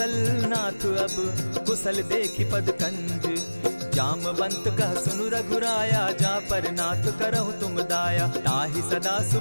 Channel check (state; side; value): inverted; both; correlation -1.00